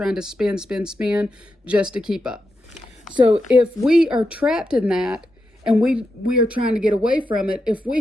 to spend just to keep up. So if we are trapped in that and we are trying to get away from it, if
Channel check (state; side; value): normal; both; correlation 0.86